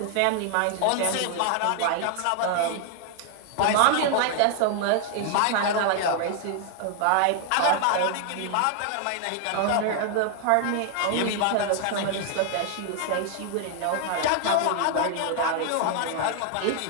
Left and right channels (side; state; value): both; different; correlation 0.00